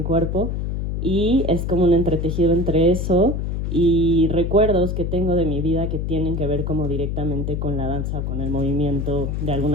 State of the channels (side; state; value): left; noise; hum, 2 dB below the sound